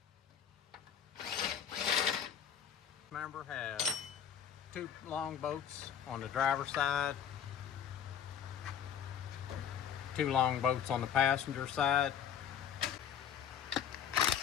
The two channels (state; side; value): quieter; right; 8.7 dB